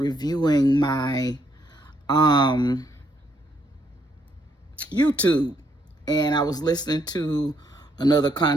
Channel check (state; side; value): normal; both; correlation 0.73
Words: my YouTube, and I was listening to another